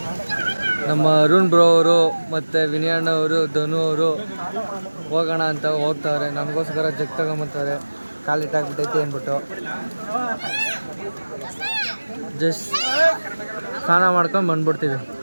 ನಮ್ಮ ಅರುಣ್ ಬ್ರೋ ಅವರು ಮತ್ತು ವಿನಯಣ್ಣ ಅವರು, ಧನು ಅವರು ಹೋಗೋಣ ಅಂತ ಹೋಗ್ತಾರೆ. ನಮಗೋಸ್ಕರ ಜಗ್ ತಗೊಂಬರ್ತಾರೆ. ಕಾಲಿಟ್ಟಾಗ್ಬಿಟ್ಟೈತೆ ಅಂದ್ಬಿಟ್ಟು ಜಸ್ಟ್ ಸ್ನಾನ ಮಾಡ್ಕೊಂಡು ಬಂದ್ಬಿಡ್ತೀವಿ.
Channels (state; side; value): inverted; both; correlation -1.00